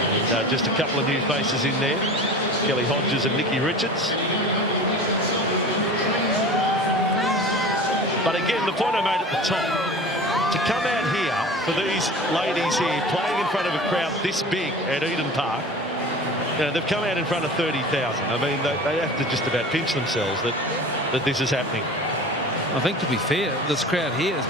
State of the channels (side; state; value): both; normal; correlation 0.37